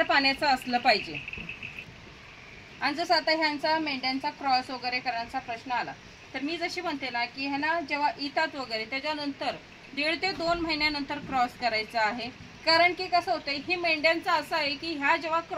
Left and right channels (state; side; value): identical; both; correlation 1.00